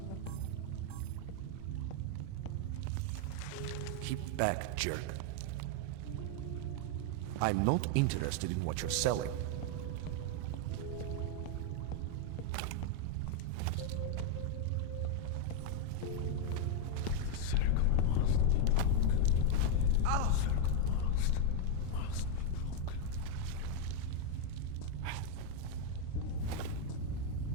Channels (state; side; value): different; both; correlation 0.01